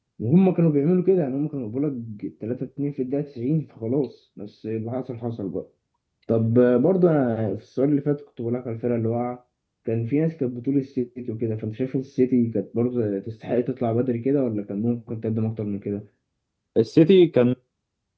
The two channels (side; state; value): both; identical; correlation 1.00